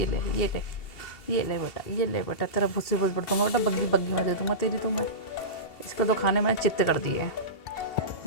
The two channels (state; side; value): late; right; 2.7 ms